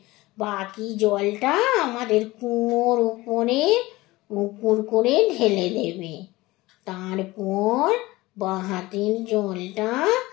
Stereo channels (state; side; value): quieter; right; 19.7 dB